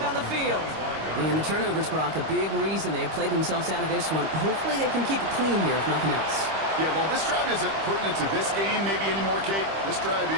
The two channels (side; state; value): left; late; 25 ms